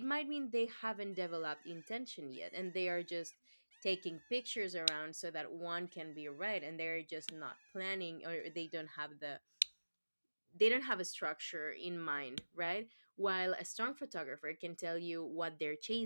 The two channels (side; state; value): both; inverted; correlation -1.00